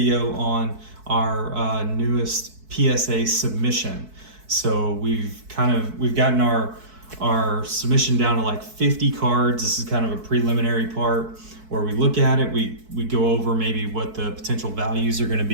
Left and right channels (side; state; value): left; late; 4.6 ms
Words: on our newest PSA submission. So we've gotten our submission down to like 50 cards. This is kind of a preliminary part where we look at it. We go over maybe what the potential values are going to